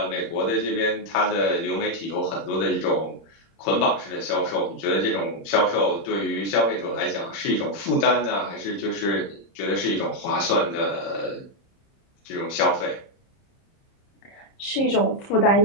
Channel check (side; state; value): right; late; 30 ms